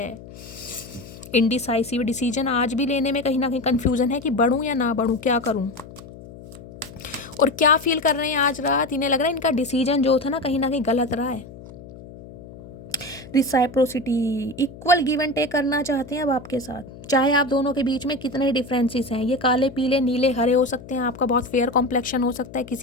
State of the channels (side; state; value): left; noise; hum, 17 dB below the sound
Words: इनडिसाइसिव डिसीजन आज भी लेने में कहीं ना कहीं कन्फ्यूज़न है कि बढ़ूँ या ना बढ़ूँ, क्या करूँ। और क्या फील कर रहे हैं आज रात? इन्हें लग रहा है इनका डिसीजन जो था ना कहीं गलत रहा है। रिसाइप्रोसिटी, इक्वल गिव एंड टेक करना चाहते हैं अब आपके साथ, चाहे आप दोनों के बीच में कितने डिफरेंसेस हैं, ये काले पीले नीले हरे हो सकते हैं, आपका बहुत फेयर कॉम्प्लेक्शन हो सकता है,